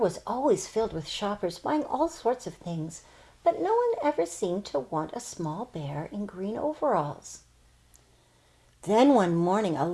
always filled with shoppers buying all sorts of things, but no one ever seemed to want a small bear in green overalls. Then one morning, a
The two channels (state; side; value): identical; both; correlation 1.00